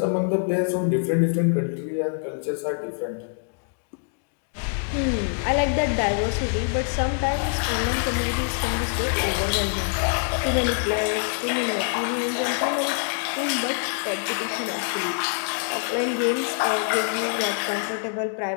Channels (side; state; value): right; silent; digital silence